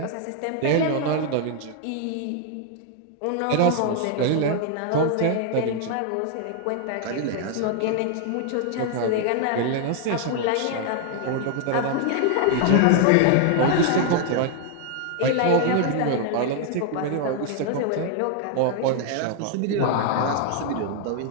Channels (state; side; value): different; both; correlation 0.00